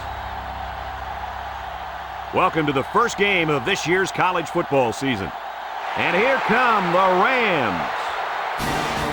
Welcome to the first game of this year's college football season. And here come the Rams.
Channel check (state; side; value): identical; both; correlation 1.00